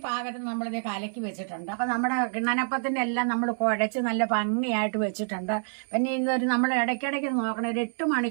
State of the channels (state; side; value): silent; left; 59 dB below the other